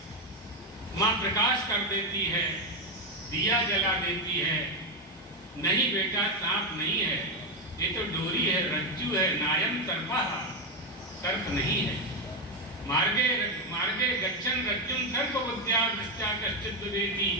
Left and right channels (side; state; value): both; normal; correlation 0.08